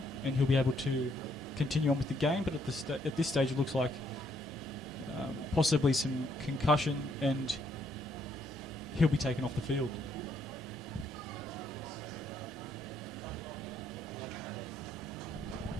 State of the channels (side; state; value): both; normal; correlation 0.71